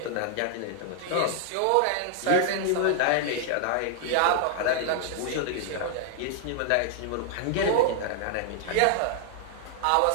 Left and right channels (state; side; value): different; both; correlation 0.00